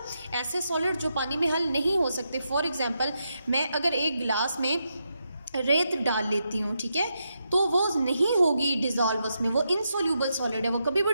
ऐसे सॉलिड जो पानी में हल नहीं हो सकते। फॉर एग्जाम्पल, मैं अगर एक गिलास में रेत डाल लेती हूँ, ठीक है, तो वो नहीं होगी डिज़ोल्व उसमें, वो इनसोल्यूबल सॉलिड है, वो कभी भी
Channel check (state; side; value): inverted; both; correlation -0.84